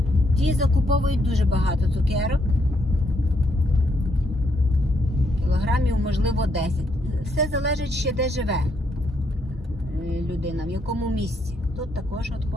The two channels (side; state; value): both; normal; correlation 0.75